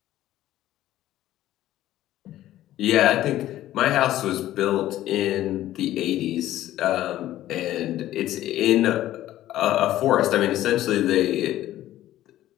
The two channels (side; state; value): right; quieter; 13.8 dB